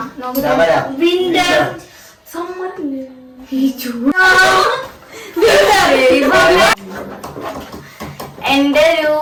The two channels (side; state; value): both; identical; correlation 1.00